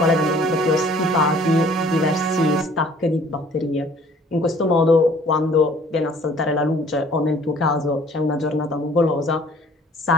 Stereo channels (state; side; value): normal; both; correlation 0.55